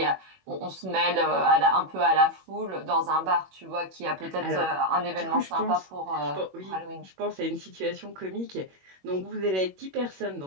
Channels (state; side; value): late; left; 21 ms